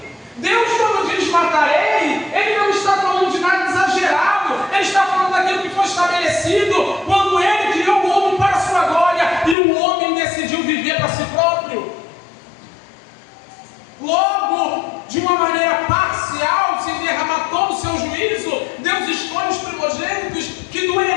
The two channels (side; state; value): right; drops out; at 9.6 s